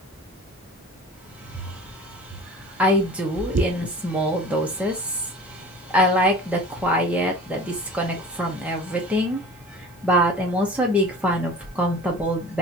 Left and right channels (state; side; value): normal; both; correlation 0.40